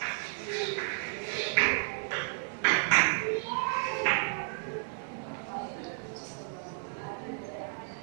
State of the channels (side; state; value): left; silent; 56 dB below the other